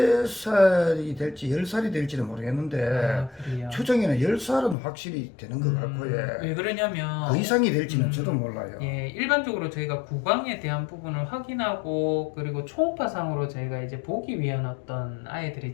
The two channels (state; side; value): drops out; right; at 4.8 s